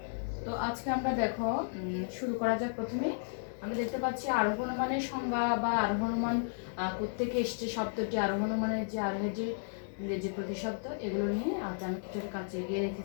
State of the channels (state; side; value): silent; right; 55 dB below the other